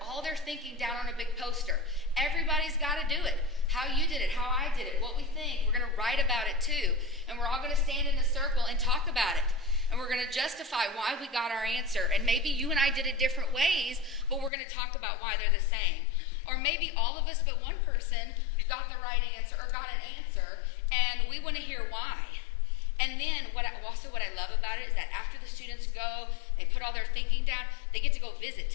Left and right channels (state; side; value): drops out; right; at 14.5 s